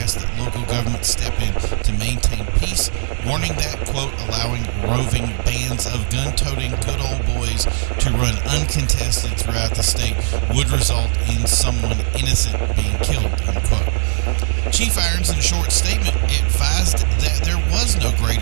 that local governments step in to maintain peace, warning that, quote, allowing roving bands of gun-toting good old boys to run uncontested throughout the state would result in someone innocent being killed, unquote. Chief Irons, in a short statement, advised that there was no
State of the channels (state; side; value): silent; left; 65 dB below the other